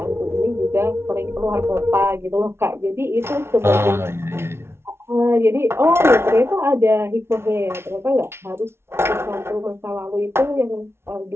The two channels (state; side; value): late; left; 0.12 ms